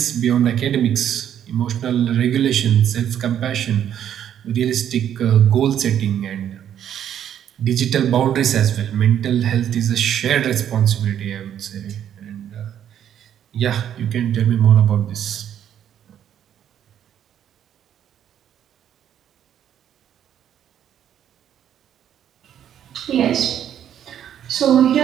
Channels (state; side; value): quieter; left; 10.0 dB